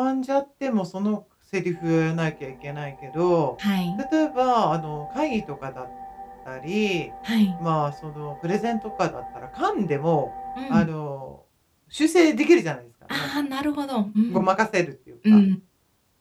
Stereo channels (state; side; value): identical; both; correlation 1.00